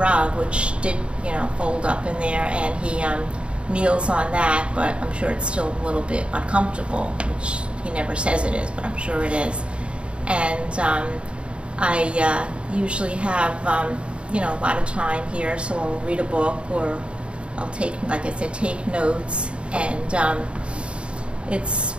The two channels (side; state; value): left; late; 0.057 ms